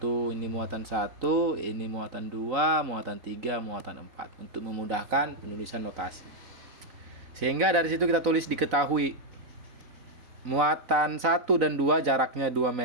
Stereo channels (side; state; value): left; late; 4.0 ms